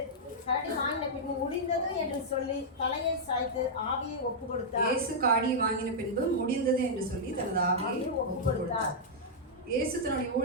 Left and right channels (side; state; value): both; normal; correlation -0.08